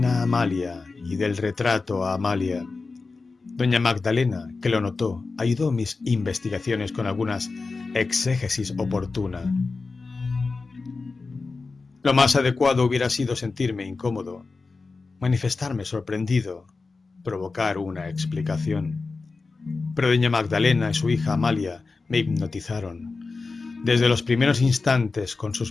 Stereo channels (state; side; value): quieter; right; 4.0 dB